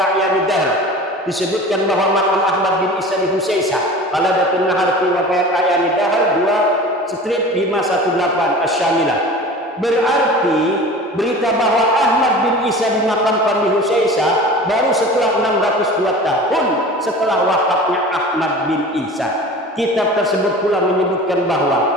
Dahr disebutkan bahwa makam Ahmad bin Isa di Husaisah. Qaladatun Nahar fi Wafayat A'yanid Dahr 2/518 Asy-Syamilah. Berarti berita bahwa Ahmad bin Isa dimakamkan di Husaisah baru setelah 602 tahun setelah wafatnya Ahmad bin Isa. Kitab tersebut pula menyebutkan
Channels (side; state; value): both; normal; correlation 0.38